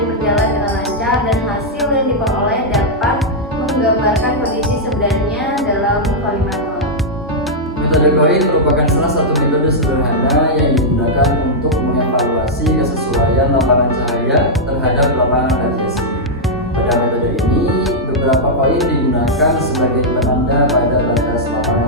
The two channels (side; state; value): both; normal; correlation -0.06